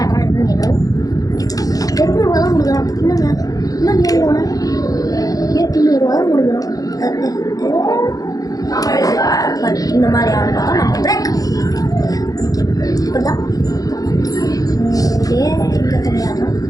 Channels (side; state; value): right; late; 0.17 ms